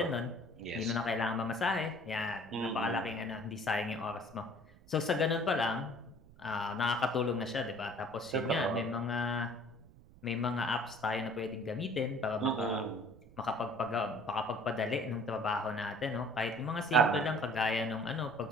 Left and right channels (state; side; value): noise; right; rumble, 23 dB below the sound